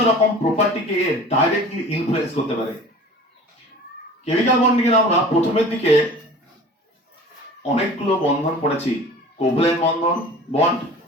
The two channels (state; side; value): normal; both; correlation 0.42